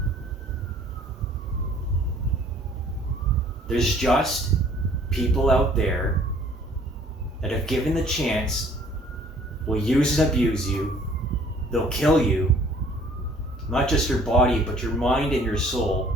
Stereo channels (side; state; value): both; normal; correlation 0.56